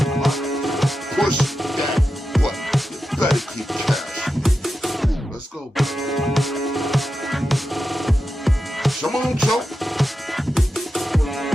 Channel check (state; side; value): normal; both; correlation 0.90